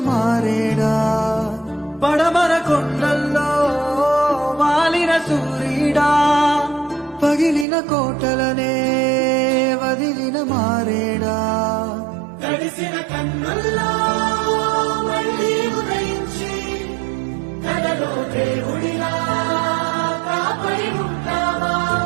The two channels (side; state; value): left; drops out; at 7.7 s